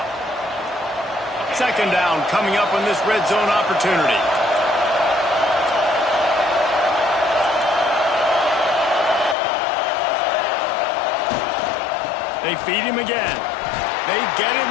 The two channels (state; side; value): drops out; right; at 9.3 s